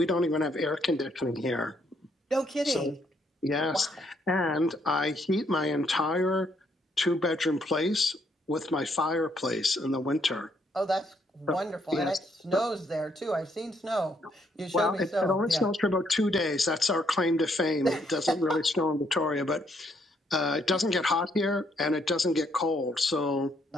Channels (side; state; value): both; normal; correlation 0.72